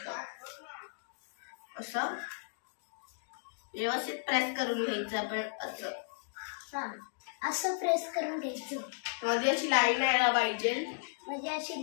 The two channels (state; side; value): silent; right; digital silence